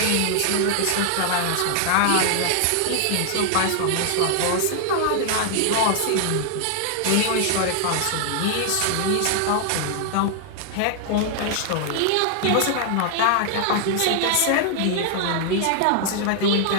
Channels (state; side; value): different; both; correlation 0.00